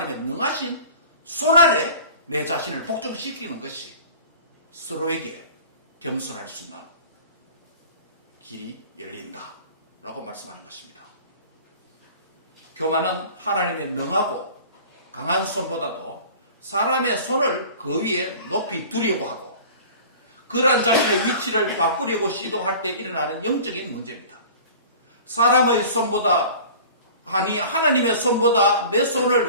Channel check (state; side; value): inverted; both; correlation -0.42